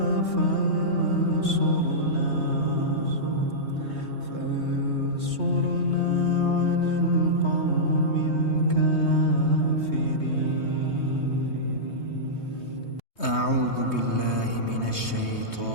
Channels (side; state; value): right; late; 3.2 ms